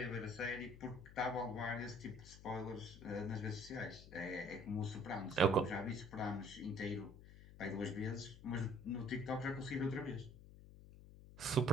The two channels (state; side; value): noise; left; hum, 17 dB below the sound